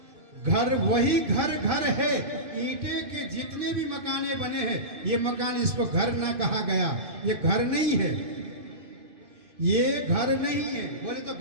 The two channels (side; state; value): left; late; 2.5 ms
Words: घर वही घर घर है। ईंटे के जितने भी मकाने बने हैं ये मकान, इसको घर ना कहा गया, ये घर नहीं है, ये घर नहीं है। बोले तो